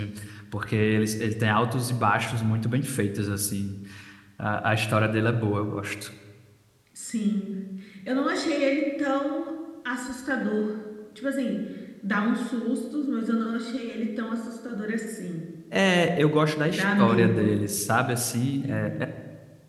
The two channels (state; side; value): identical; both; correlation 1.00